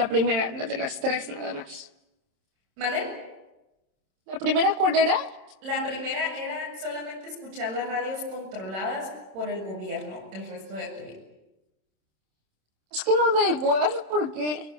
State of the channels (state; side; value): late; left; 27 ms